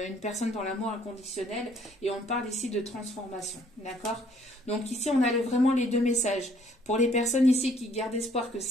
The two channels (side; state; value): both; normal; correlation 0.62